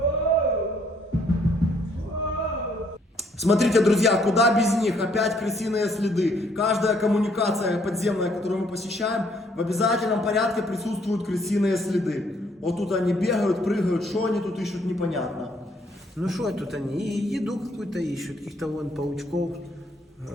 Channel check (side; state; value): both; normal; correlation 0.66